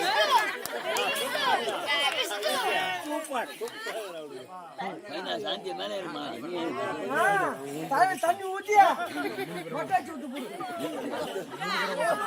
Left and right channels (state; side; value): identical; both; correlation 1.00